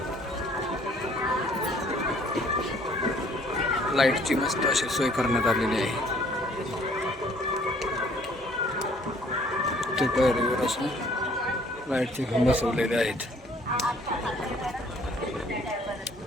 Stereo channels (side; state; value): both; normal; correlation 0.59